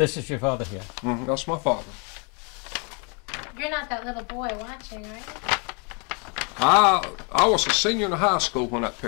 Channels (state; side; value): quieter; right; 34.8 dB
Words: is your father here. That's my father. You're not that little boy watching, right? I was a senior in high school when that